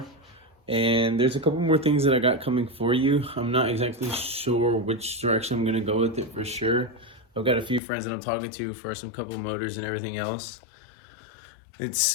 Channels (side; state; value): right; drops out; at 7.8 s